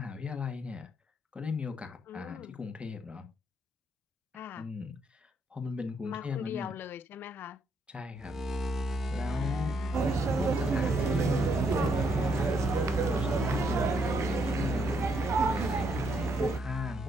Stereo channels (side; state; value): both; normal; correlation 0.73